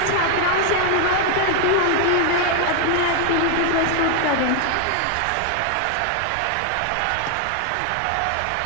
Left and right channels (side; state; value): both; different; correlation 0.00